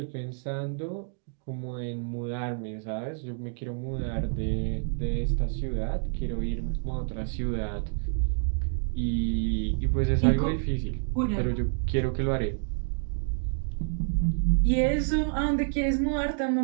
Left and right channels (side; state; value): left; silent; 59 dB below the other